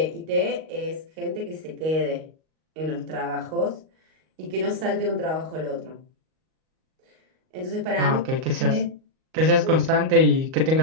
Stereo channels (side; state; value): left; late; 38 ms